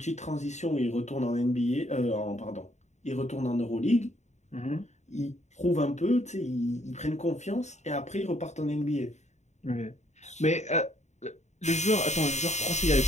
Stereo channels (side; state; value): right; late; 0.33 ms